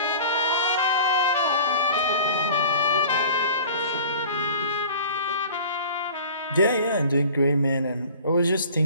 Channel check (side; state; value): both; inverted; correlation -0.43